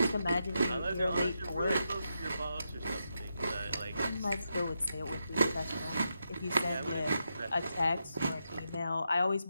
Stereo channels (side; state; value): both; inverted; correlation -0.85